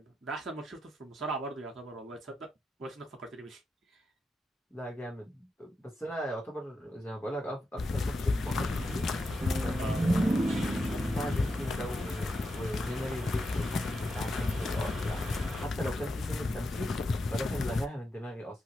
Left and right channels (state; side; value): normal; both; correlation 0.86